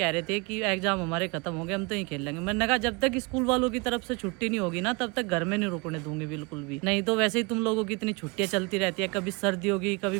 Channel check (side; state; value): left; quieter; 29.0 dB